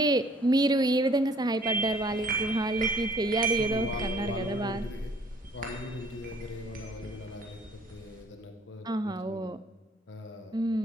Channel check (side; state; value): both; normal; correlation 0.58